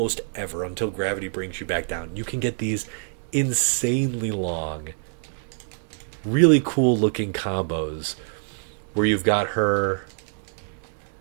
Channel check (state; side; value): silent; left; digital silence